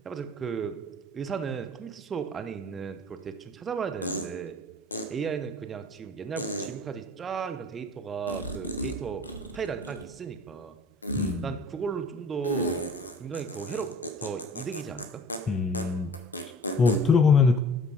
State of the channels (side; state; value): both; normal; correlation 0.47